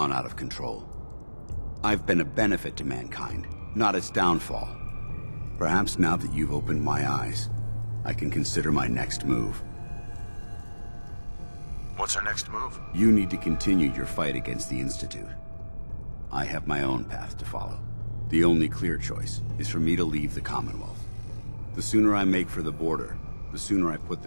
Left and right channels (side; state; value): both; inverted; correlation -1.00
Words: out of control. I've been a benefit to mankind, not its downfall. Perhaps now that you've opened my eyes, I can consider my next move. What's our next move? You need to continue your fight against the Institute. I have my own path to follow. The only clear choice is for me to leave the Commonwealth. The sooner I make for the border, the sooner I put